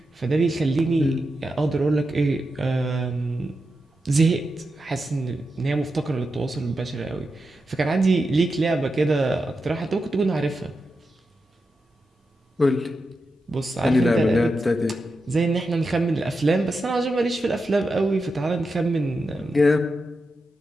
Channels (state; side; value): normal; both; correlation 0.88